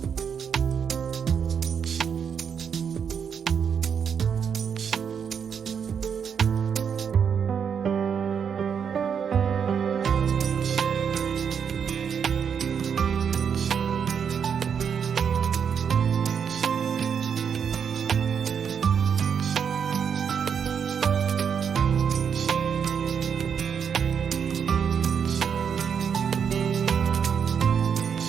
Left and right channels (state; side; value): quieter; left; 7.2 dB